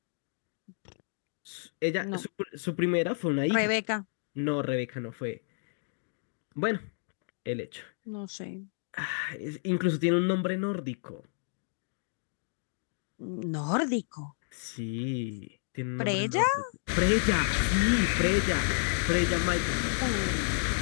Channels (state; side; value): silent; right; digital silence